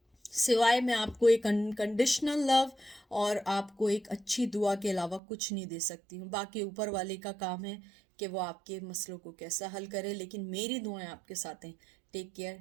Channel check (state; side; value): drops out; left; at 5.2 s